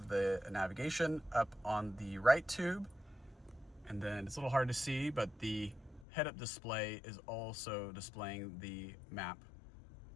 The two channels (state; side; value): drops out; right; at 6.1 s